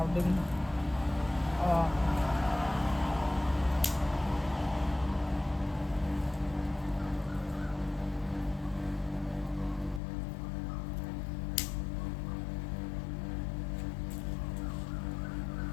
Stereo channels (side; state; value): right; drops out; at 10.0 s